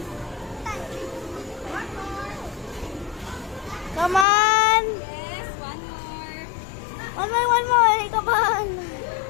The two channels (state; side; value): drops out; right; at 4.2 s